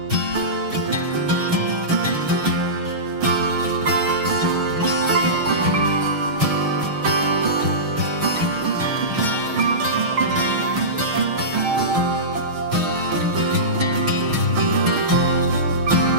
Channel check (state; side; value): late; left; 6.3 ms